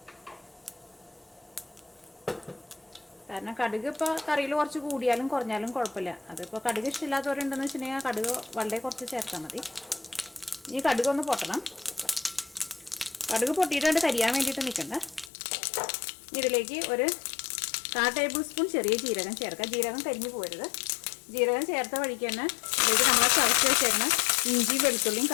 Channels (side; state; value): right; drops out; at 15.3 s